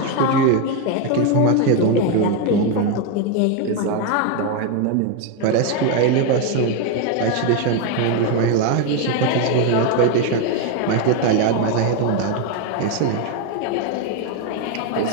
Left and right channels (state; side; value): different; both; correlation 0.02